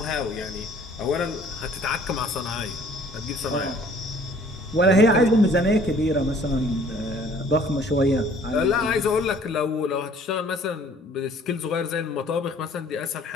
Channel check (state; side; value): normal; both; correlation 0.55